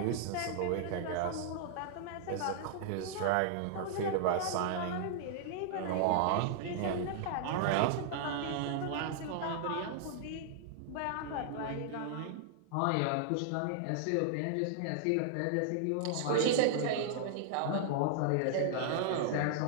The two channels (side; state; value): both; different; correlation -0.01